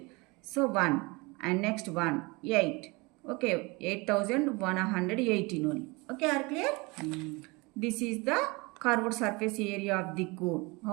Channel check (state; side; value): quieter; left; 25.9 dB